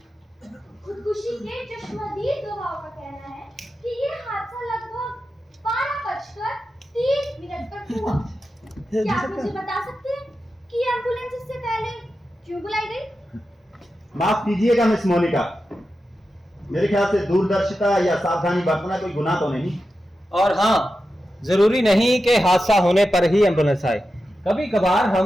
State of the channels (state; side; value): normal; both; correlation 0.91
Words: खुदकुशी के चश्मदीद गवाहों का कहना है कि ये हादसा लगभग 12:30 पर हुआ। क्या आप मुझे बता सकते हैं कि एम्बुलेंस इससे पहले क्यों बुलाई गई? माफ कीजिएगा मिस मोनिका, मेरे ख्याल से दूरदर्शिता या सावधानी बरतना कोई गुनाह तो नहीं। और हाँ, जरूरी नहीं कि हादसा होने पर ही एम्बुलेंस आए, कभी कभार